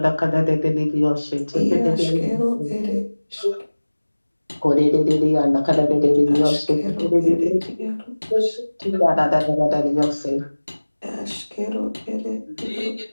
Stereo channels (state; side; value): inverted; both; correlation -1.00